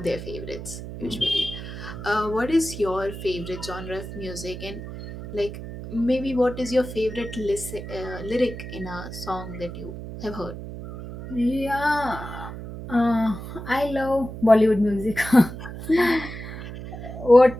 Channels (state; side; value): noise; right; hum, 10 dB below the sound